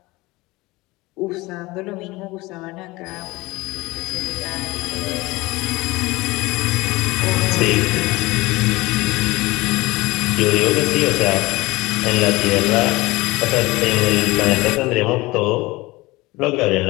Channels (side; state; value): right; quieter; 21.4 dB